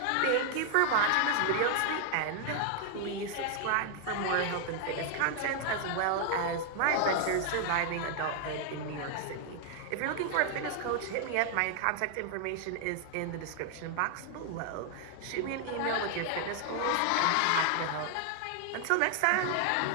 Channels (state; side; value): different; both; correlation 0.00